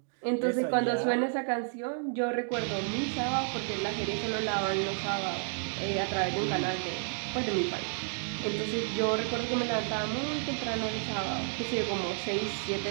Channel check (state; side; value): silent; left; 57 dB below the other